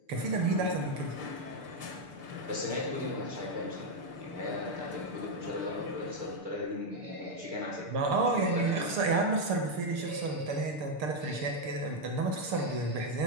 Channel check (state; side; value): late; left; 6.7 ms